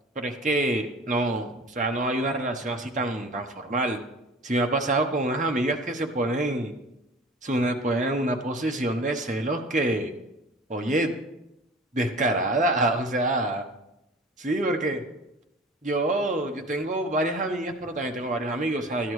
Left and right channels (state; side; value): normal; both; correlation 0.41